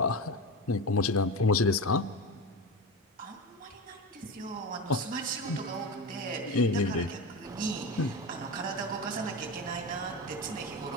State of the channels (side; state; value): both; normal; correlation 0.22